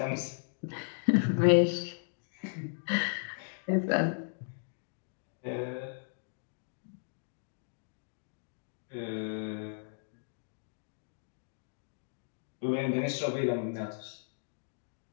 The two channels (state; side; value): silent; right; digital silence